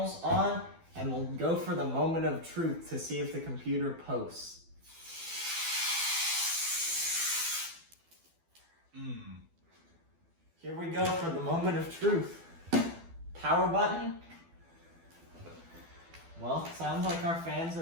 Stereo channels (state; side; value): late; left; 12 ms